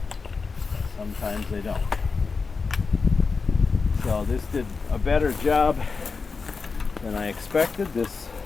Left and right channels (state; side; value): quieter; right; 4.7 dB